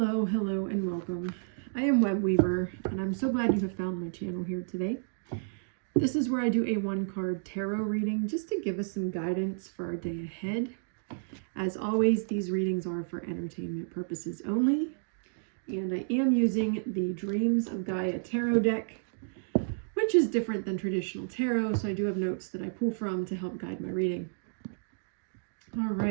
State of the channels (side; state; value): left; silent; digital silence